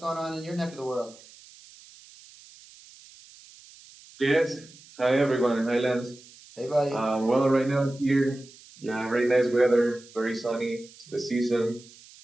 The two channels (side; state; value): right; noise; hiss, 22 dB below the sound